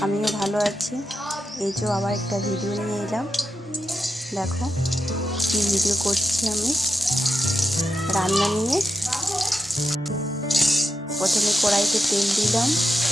আমিও ভালো আছি। এই যে আবার একটা ভিডিও নিয়ে এলাম। দেখো কি ভিডিও করছি আমি, রান্না নিয়ে। প্রথমে কড়াইতে তেল দিলাম,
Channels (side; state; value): both; normal; correlation 0.87